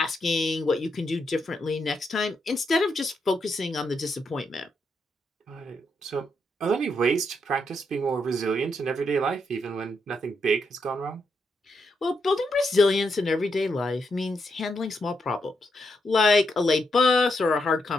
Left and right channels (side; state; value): both; normal; correlation 0.80